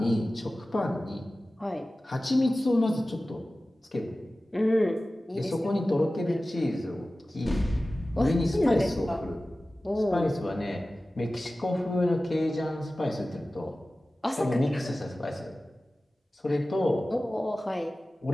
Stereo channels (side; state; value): both; normal; correlation 0.96